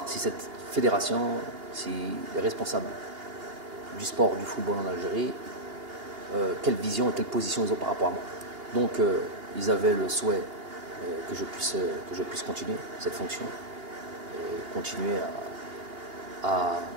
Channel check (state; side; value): late; left; 2.8 ms